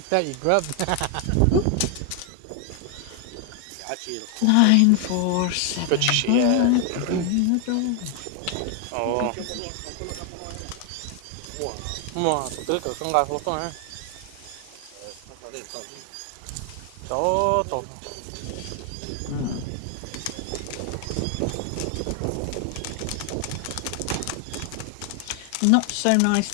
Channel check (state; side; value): different; both; correlation 0.00